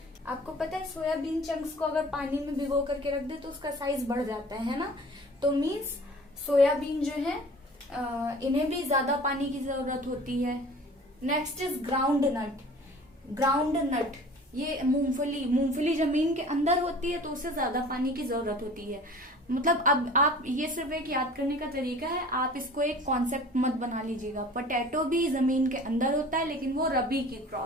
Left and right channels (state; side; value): normal; both; correlation 0.45